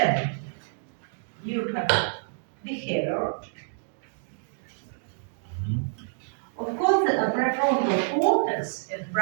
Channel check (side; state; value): left; silent; digital silence